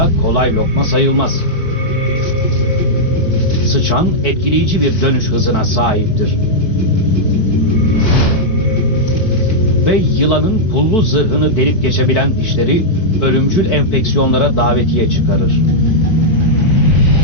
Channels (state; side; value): late; right; 4.4 ms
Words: kolay lokma sayılmaz. Sıçan etkileyici bir dönüş hızına sahiptir. Ve yılanın pullu zırhını delip geçebilen dişleri ölümcül enfeksiyonlara davetiye çıkarır.